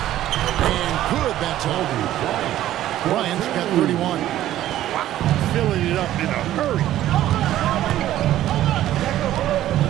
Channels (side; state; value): left; quieter; 13.3 dB